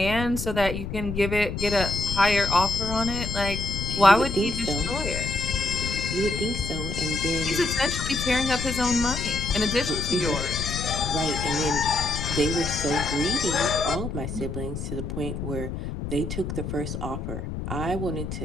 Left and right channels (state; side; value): noise; left; rumble, 5 dB below the sound